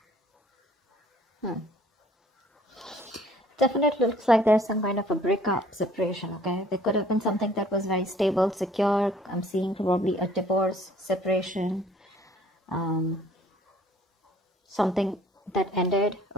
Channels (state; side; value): normal; both; correlation 0.56